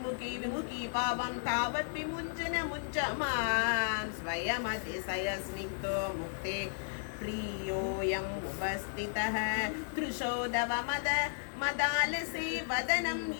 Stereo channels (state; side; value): silent; right; 55 dB below the other